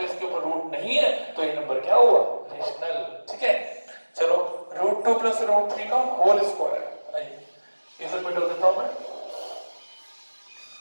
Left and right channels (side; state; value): both; inverted; correlation -1.00